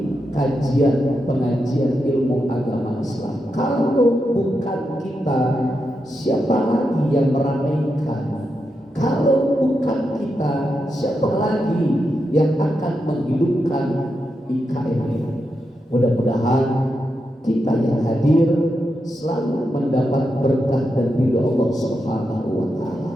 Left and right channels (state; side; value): normal; both; correlation 0.86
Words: kajian pengajian ilmu agama Islam. Kalau bukan kita, siapa lagi yang meramaikan? Kalau bukan kita, siapa lagi yang akan menghidupkan IKM ini? Mudah-mudahan kita yang hadir selalu mendapat berkah dan ridho Allah Subhanahu wa taala.